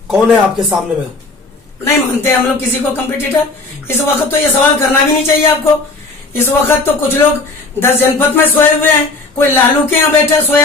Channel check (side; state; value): right; quieter; 3.5 dB